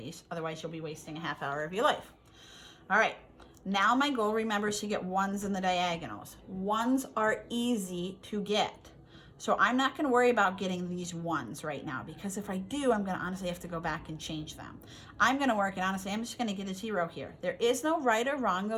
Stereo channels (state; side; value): identical; both; correlation 1.00